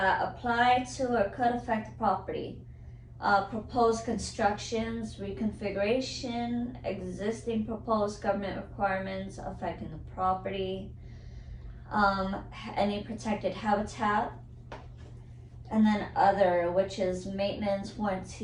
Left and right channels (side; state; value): both; identical; correlation 1.00